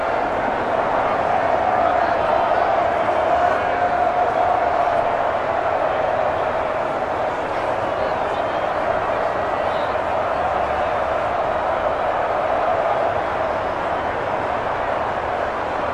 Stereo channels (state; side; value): identical; both; correlation 1.00